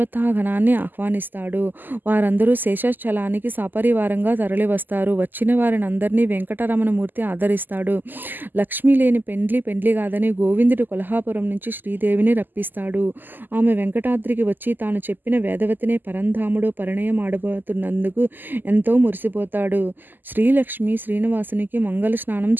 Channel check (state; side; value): late; left; 0.089 ms